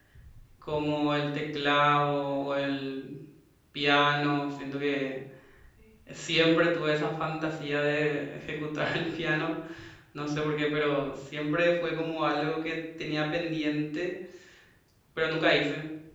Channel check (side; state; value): both; identical; correlation 1.00